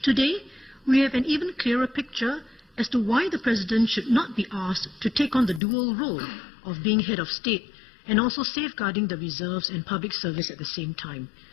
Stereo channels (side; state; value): right; drops out; at 5.6 s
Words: Today, we have an even clearer picture as to why the president should not be asked to take on the dual role of being head of state and also safeguarding the reserves and public service at the same time.